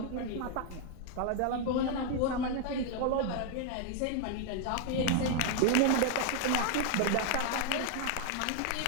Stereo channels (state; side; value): different; both; correlation 0.00